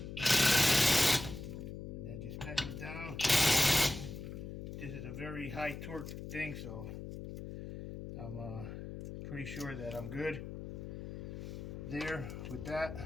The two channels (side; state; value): left; noise; hum, 8 dB below the sound